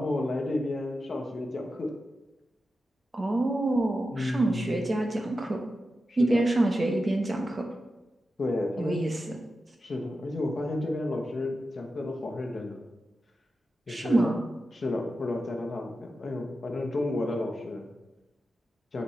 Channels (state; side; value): normal; both; correlation 0.91